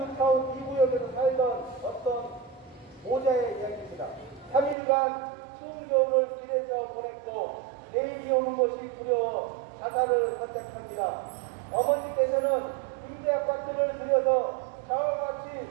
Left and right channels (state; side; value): drops out; left; at 4.8 s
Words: 타운 2구역에서 살던 어떤 모자의 이야기입니다. 3일간 추운 겨울을 길에서 보냈고 내일이 오는 것이 두려워 자살을 선택합니다. 어머니께서는 임대 아파트를 들여서 자와